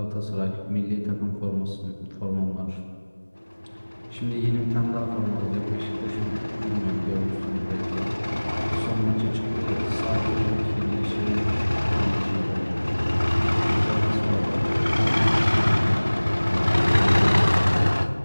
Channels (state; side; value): inverted; both; correlation -1.00